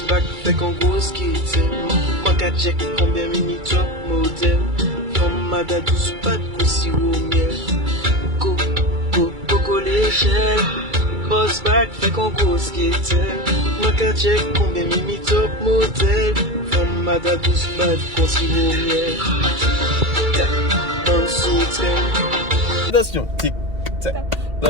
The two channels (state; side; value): late; left; 2.3 ms